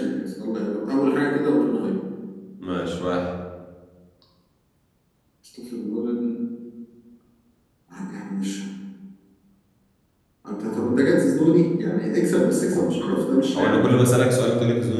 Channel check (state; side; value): identical; both; correlation 1.00